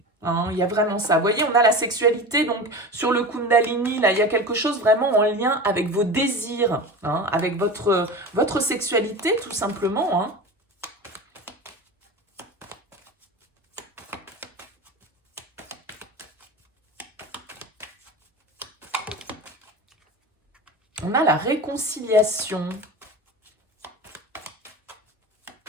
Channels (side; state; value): both; normal; correlation 0.30